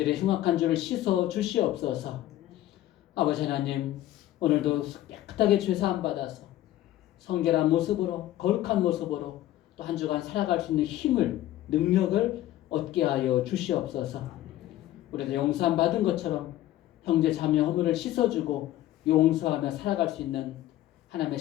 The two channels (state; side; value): quieter; right; 14.2 dB